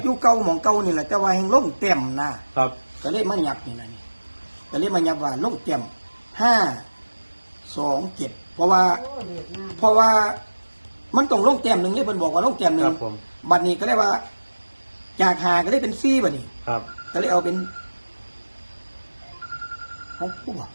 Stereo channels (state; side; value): inverted; both; correlation -1.00